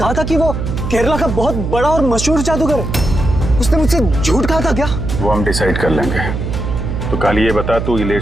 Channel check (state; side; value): noise; right; hum, 4 dB below the sound